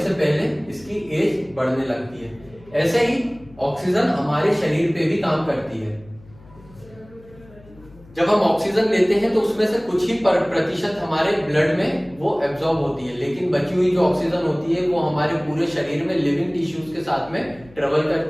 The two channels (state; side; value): noise; left; hum, 24 dB below the sound